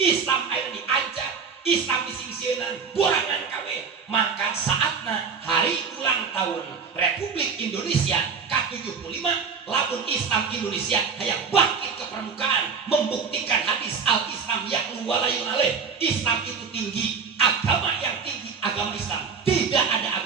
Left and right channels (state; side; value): quieter; left; 5.8 dB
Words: air diancam, Islam disingsieunan, borangan kabeh. Maka saatna hari ulang tahun Republik Indonesia ke-75, lamun Islam Indonesia hayang bangkit ke permukaan, membuktikan hadis al-Islam ya'lu walayun alaih. Islam itu tinggi, agama yang tinggi agama Islam. Tidak ada